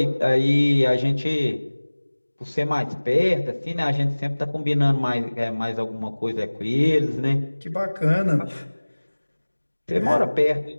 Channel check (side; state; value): both; inverted; correlation -1.00